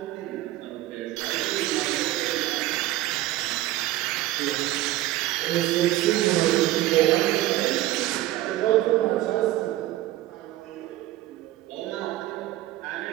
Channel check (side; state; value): left; quieter; 15.5 dB